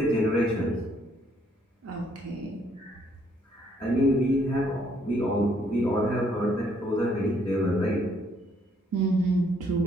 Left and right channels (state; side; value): normal; both; correlation 0.68